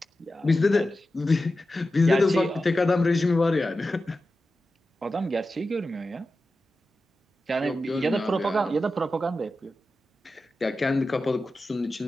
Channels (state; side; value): normal; both; correlation 0.92